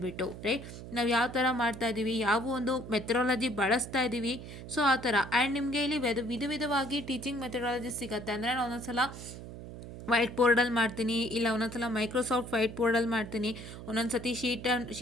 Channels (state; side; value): noise; right; hum, 12 dB below the sound